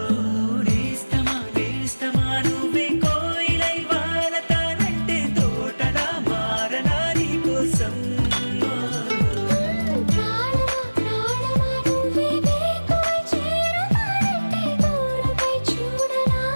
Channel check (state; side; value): inverted; both; correlation -1.00